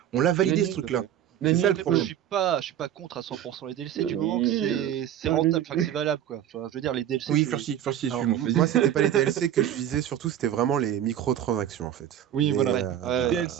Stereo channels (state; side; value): quieter; left; 10.8 dB